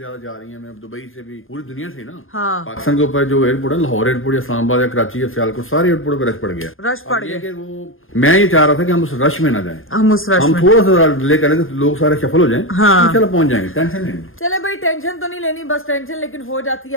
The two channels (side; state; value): right; late; 0.59 ms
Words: जा रही है, मैं दुबई से भी, पूरी दुनिया से ना। हाँ। पाकिस्तान के ऊपर जो एयरपोर्ट है, लाहौर एयरपोर्ट या इस्लामाबाद या कराची या सियालकोट, सारे एयरपोर्ट पे रश पड़ गया। रश पड़ गया कि वो मैं ये चाह रहा था कि हम उस रश में ना जाएं, हम उस रश हम में थोड़ा सा डिले करें तो लोग सारे सफल हो जाएं। हाँ। चलो पहुंच जाएंगे, टेंशन नहीं। चले भाई, टेंशन तो नहीं लेनी, बस टेंशन लेकिन हो जाती